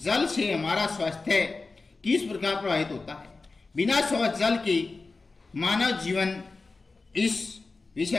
जल से हमारा स्वास्थ्य किस प्रकार प्रभावित होता है? बिना स्वच्छ जल के मानव जीवन, इस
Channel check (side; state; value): right; quieter; 3.8 dB